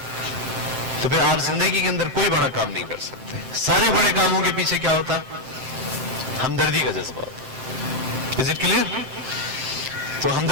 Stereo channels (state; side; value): late; left; 7.7 ms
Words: تو پھر آپ زندگی کے اندر کوئی بڑا کام نہیں کر سکتے. سارے بڑے کاموں کے پیچھے کیا ہوتا ہے؟ ہمدردی کا جذبہ ہوتا ہے. Is it clear? تو